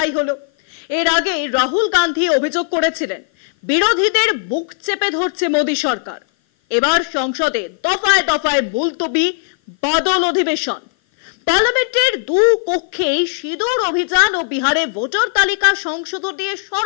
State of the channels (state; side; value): silent; right; 56 dB below the other